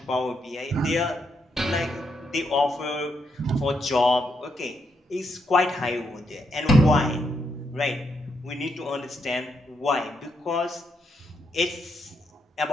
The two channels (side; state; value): both; normal; correlation 0.79